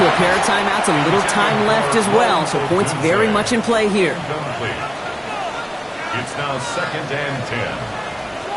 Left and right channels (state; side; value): identical; both; correlation 1.00